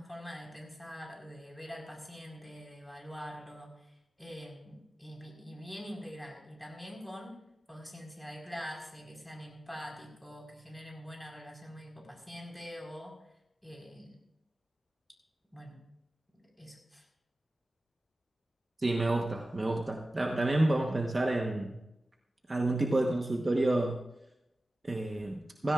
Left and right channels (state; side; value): normal; both; correlation 0.95